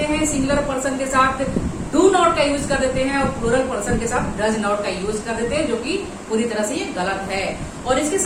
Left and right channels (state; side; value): identical; both; correlation 1.00